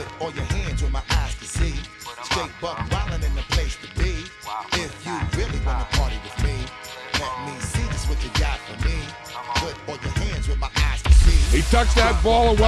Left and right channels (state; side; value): identical; both; correlation 1.00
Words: all your hands where my eyes can see. Straight buck wildin' in the place to be. If you really wanna party with me, let me see just what you got for me. Put all your hands where my eyes can see. He tucks that ball